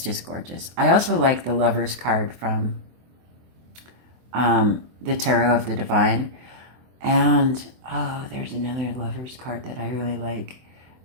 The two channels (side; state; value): left; late; 23 ms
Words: gorgeous. I also like the Lovers card from the Tarot of the Divine. And, there's another Lovers card that I really like.